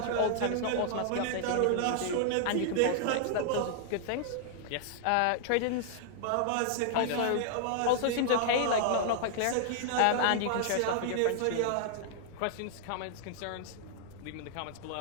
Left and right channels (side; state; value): both; different; correlation -0.01